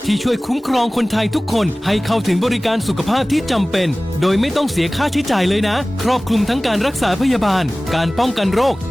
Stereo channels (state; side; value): normal; both; correlation 0.98